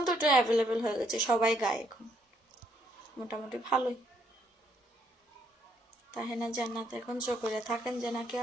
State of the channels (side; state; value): both; normal; correlation 0.71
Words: তো একটু অ্যাভেলেবেল হয়ে গেছে, সবাই গায় এখন, মোটামুটি ভালোই। তাহেনা জান্নাত এখন চকরিয়া থাকেন যে নাকি